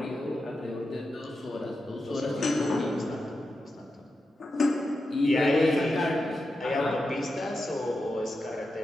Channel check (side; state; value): both; normal; correlation 0.89